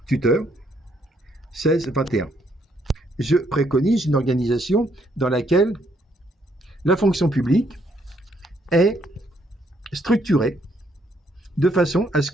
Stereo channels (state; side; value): normal; both; correlation 0.72